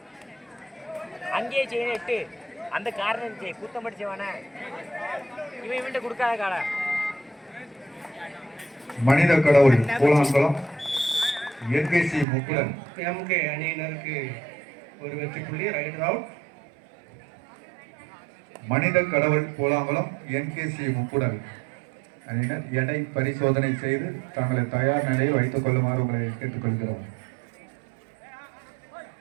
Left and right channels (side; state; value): left; drops out; at 12.2 s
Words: அங்கேயே செய்யணும் 8 அந்த காரணம் கூத்தம் படிச்சவன இவன் இவன்ட்ட கொடுக்காத கால மனித கடவுள் பூலாங்குளம் என்கேசி முக்குடன் எம்கே அணியினருக்கு ஒரு வெற்றி புள்ளி. Right out. மனித கடவுள் பூலாங்குளம் என்கேசி முக்குடன் அணியினர் எடை பரிசோதனை செய்து தங்களை தயார் நிலையில் வைத்துக் கொள்ளுமாறு உங்களை கேட்டுக்கொள்கிறோம்.